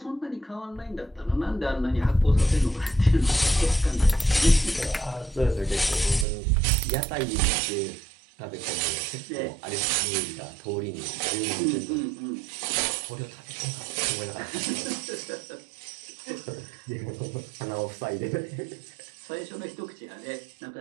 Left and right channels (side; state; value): left; drops out; at 6.2 s